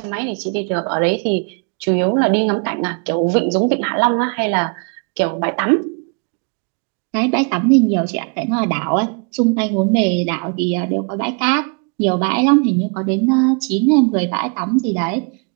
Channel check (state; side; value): quieter; left; 37.7 dB